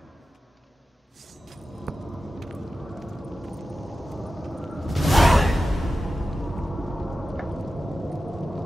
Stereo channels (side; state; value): both; normal; correlation 0.93